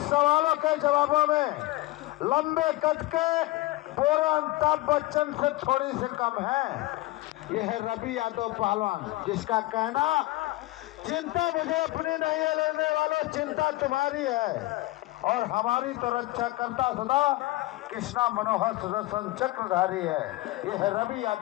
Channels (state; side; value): quieter; right; 19.1 dB